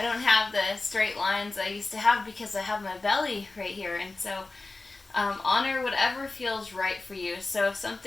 don't have the straight lines I used to have because I have my belly right here. And so honor whatever feels right for you. So if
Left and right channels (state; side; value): quieter; right; 3.4 dB